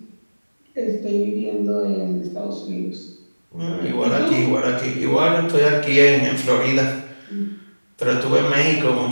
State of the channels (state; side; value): inverted; both; correlation -1.00